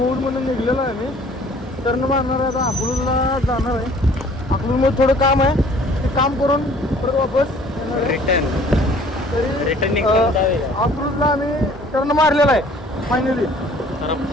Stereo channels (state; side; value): normal; both; correlation 0.54